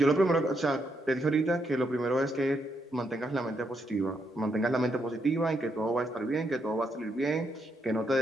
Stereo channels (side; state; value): both; normal; correlation 0.78